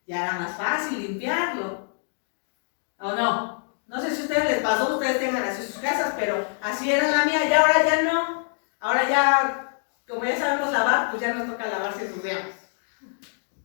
ya era más fácil limpiarlo. ¿O no? No sé si a ustedes les pasó, ustedes tengan así sus casas, pero así era la mía y ahora ya no. Ahora ya, como ya sabemos lavar, pues ya nos toca lavar si ensuciamos.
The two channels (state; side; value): silent; right; digital silence